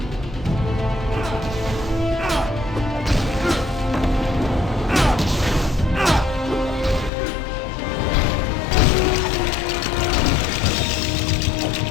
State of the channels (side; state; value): right; drops out; at 7.1 s